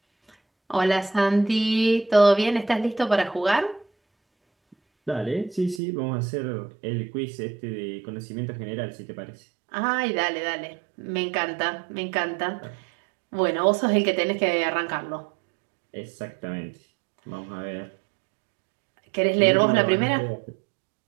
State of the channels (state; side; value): drops out; left; at 5.8 s